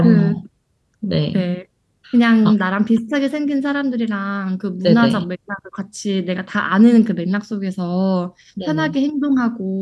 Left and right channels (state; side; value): identical; both; correlation 1.00